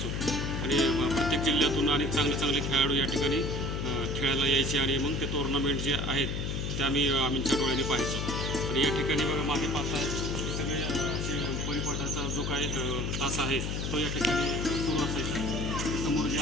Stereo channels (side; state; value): left; noise; hum, 2 dB below the sound